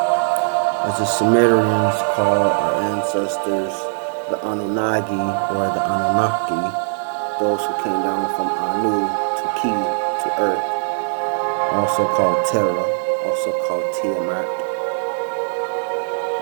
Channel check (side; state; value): left; silent; digital silence